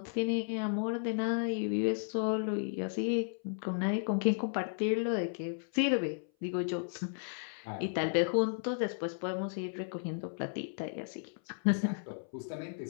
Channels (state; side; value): silent; right; 55 dB below the other